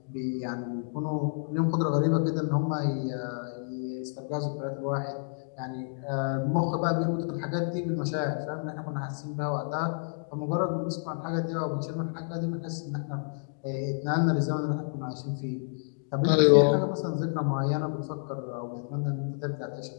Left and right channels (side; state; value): right; silent; digital silence